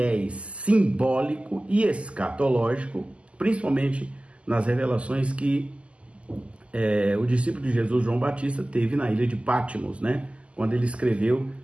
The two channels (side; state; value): left; late; 0.057 ms